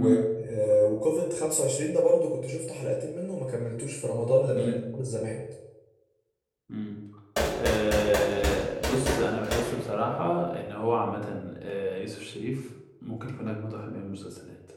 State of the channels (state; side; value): identical; both; correlation 1.00